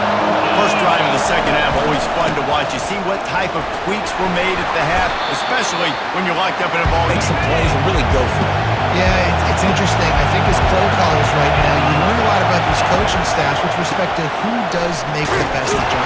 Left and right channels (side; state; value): both; identical; correlation 1.00